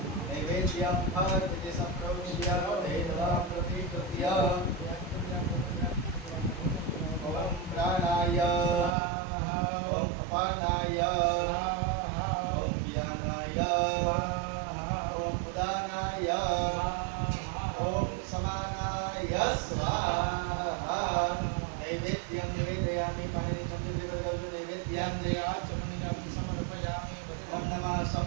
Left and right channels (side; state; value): left; drops out; at 8.9 s